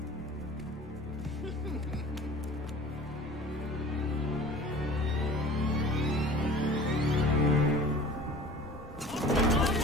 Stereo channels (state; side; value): normal; both; correlation 0.42